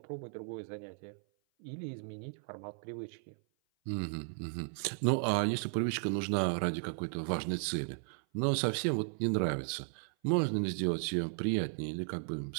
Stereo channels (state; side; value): silent; left; 54 dB below the other